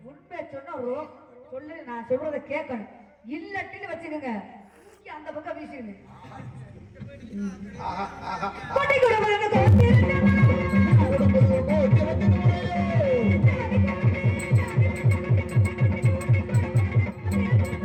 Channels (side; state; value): both; identical; correlation 1.00